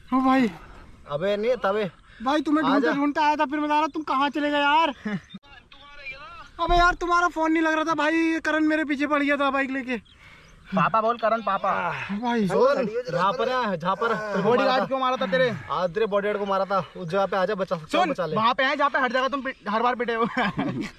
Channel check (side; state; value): both; identical; correlation 1.00